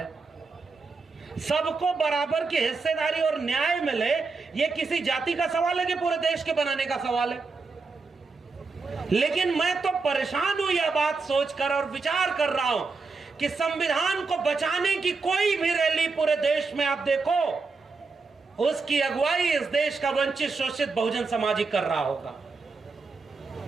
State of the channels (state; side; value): quieter; left; 4.3 dB